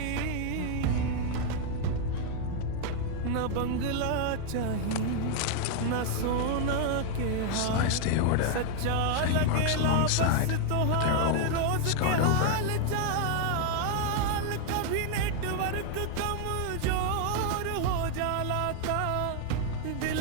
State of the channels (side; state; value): both; different; correlation 0.00